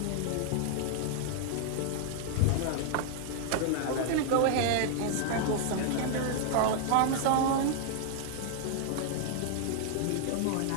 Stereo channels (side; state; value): both; different; correlation 0.00